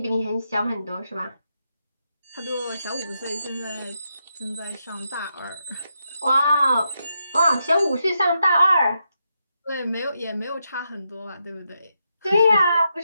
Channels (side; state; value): both; inverted; correlation -0.83